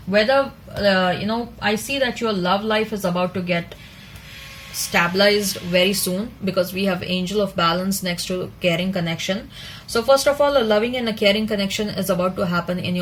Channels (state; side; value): identical; both; correlation 1.00